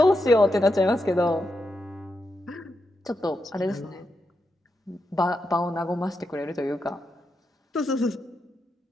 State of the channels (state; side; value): normal; both; correlation 0.85